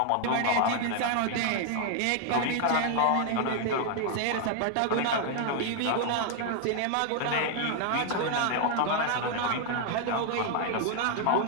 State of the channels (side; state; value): both; different; correlation 0.00